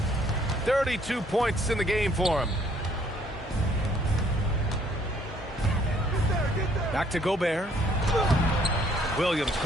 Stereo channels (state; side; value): normal; both; correlation 0.63